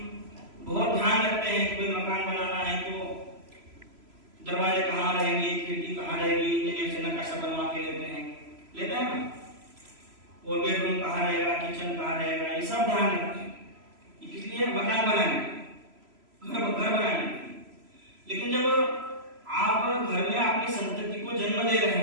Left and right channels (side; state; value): left; late; 3.0 ms